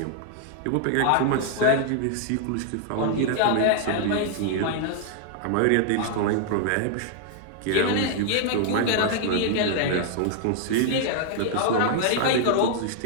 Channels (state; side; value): different; both; correlation 0.00